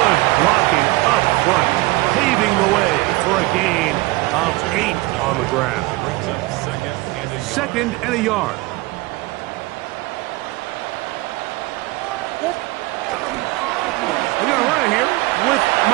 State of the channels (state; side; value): quieter; left; 21.0 dB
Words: blocking up front, paving the way for a gain of 8 on the ground. 2nd and a yard. They're going to run it here with